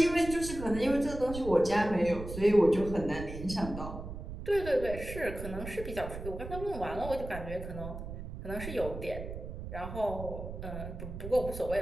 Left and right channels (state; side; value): noise; right; rumble, 9 dB below the sound